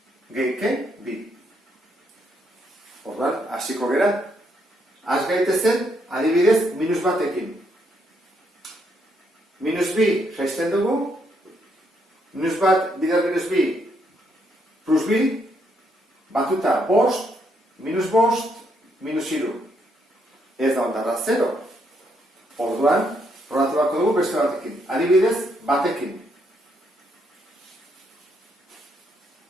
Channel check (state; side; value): normal; both; correlation 0.75